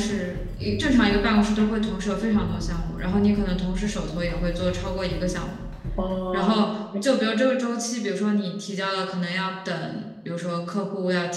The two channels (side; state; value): both; identical; correlation 1.00